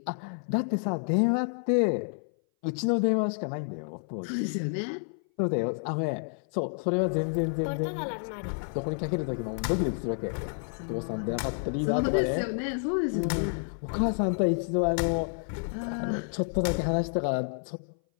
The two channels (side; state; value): right; silent; 58 dB below the other